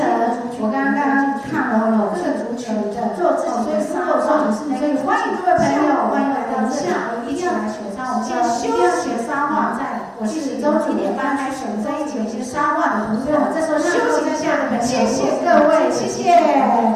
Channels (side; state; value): both; identical; correlation 1.00